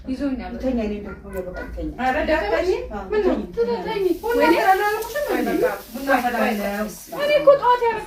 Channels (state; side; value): identical; both; correlation 1.00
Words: ይዞኛል ተኛኝ ደግሞ ለበቀኝ አረ ዳክተኝ ምን ነው ተተኝ ወይኔ አላልኩሽም በቃ ቡና ፈላለው እኔ እኮ ጧት